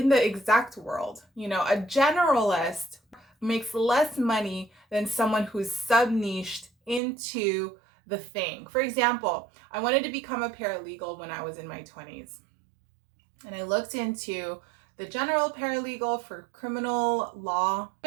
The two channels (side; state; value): left; drops out; at 7.0 s